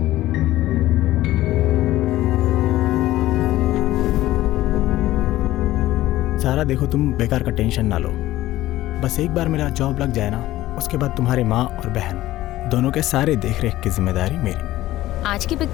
सारा देखो, तुम बेकार का टेंशन ना लो। बस एक बार मेरा जॉब लग जाए ना, उसके बाद तुम्हारी माँ और बहन दोनों के सारे देख रेख की जिम्मेदारी मेरी। आज की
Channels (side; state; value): right; quieter; 15.6 dB